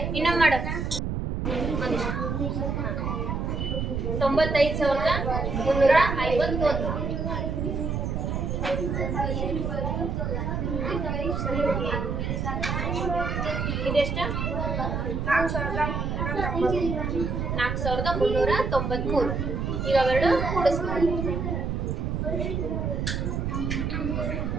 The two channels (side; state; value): right; noise; rumble, 1 dB below the sound